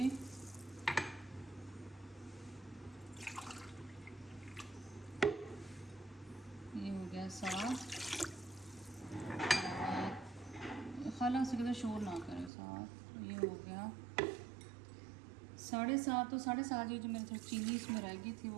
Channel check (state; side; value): drops out; left; at 12.5 s